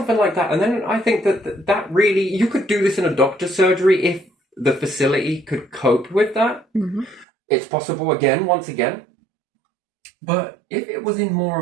like that. And then I think that really, you could do this in a doctor's surgery if the facility could cope with that. Mm-hmm. It's possible once again. But if it was in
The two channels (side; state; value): left; drops out; at 7.2 s